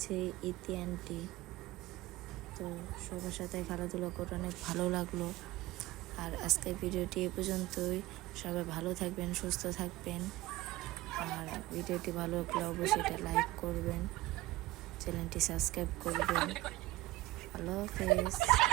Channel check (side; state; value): left; quieter; 18.2 dB